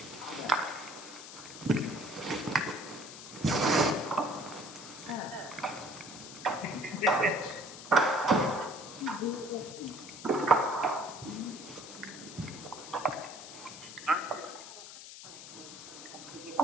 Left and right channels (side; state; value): left; noise; hiss, 13 dB below the sound